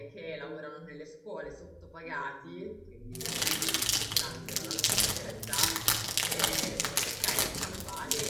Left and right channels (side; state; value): both; identical; correlation 1.00